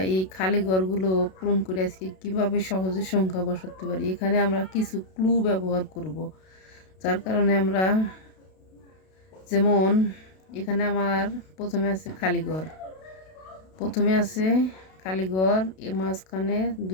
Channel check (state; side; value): late; right; 32 ms